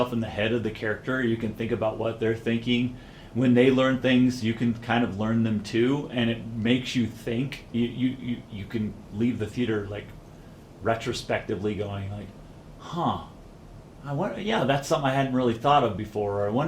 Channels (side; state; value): both; identical; correlation 1.00